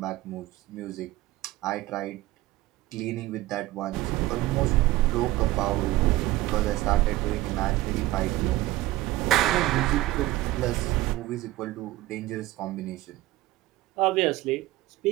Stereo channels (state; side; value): quieter; left; 17.0 dB